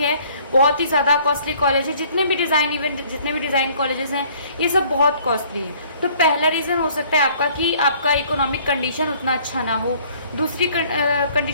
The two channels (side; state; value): both; inverted; correlation -0.57